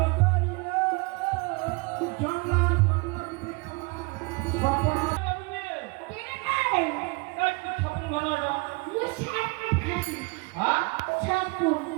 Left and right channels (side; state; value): left; quieter; 27.4 dB